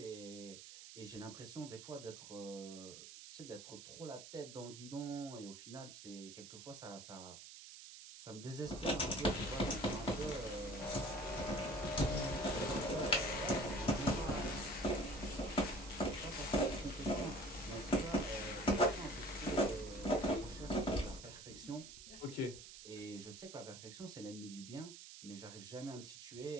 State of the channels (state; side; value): noise; right; hiss, 13 dB below the sound